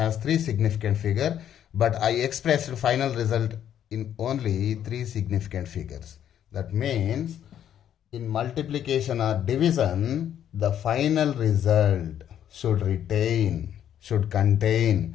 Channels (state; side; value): quieter; right; 10.1 dB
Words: 3 significant figure, but I expressed final result in only 3 significant figures. That means in multiplication or division, the final result should contain